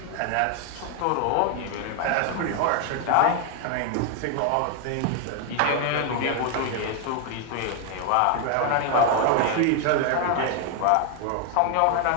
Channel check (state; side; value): different; both; correlation 0.01